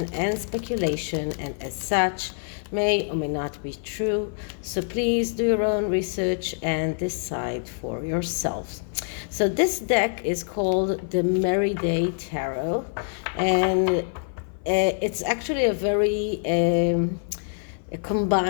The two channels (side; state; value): right; silent; 55 dB below the other